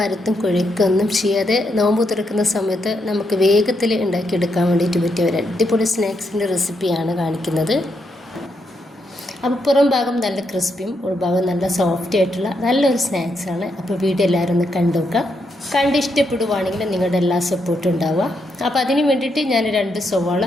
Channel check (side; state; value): both; normal; correlation 0.80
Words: കുഴക്കൊന്നും ചെയ്യാതെ നോമ്പ് തുറക്കുന്ന സമയത്ത് നമുക്ക് വേഗത്തിൽ ഉണ്ടാക്കിയെടുക്കാൻ വേണ്ടിയിട്ട് പറ്റിയ ഒരു അടിപൊളി സ്നാക്സിൻ്റെ റെസിപ്പിയാണ് കാണിക്കുന്നത്. അപ്പോൾ പുറം ഭാഗം നല്ല ക്രിസ്പിയും ഉൾഭാഗം നല്ല സോഫ്റ്റ് ആയിട്ടുള്ള നല്ലൊരു സ്നാക്സാണ്. അപ്പോൾ വീഡിയോ എല്ലാവരും ഒന്ന് കണ്ടു നോക്കുക. കണ്ട് ഇഷ്ടപ്പെടുവാണെങ്കിൽ നിങ്ങളുടെ എല്ലാ സപ്പോർട്ടും ഉണ്ടാവുക. അപ്പോൾ അതിന് വേണ്ടിയിട്ട് ഞാൻ 2 സവാള